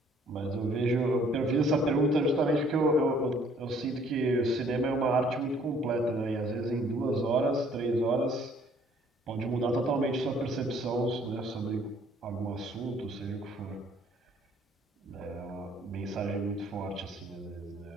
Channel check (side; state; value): both; normal; correlation 0.60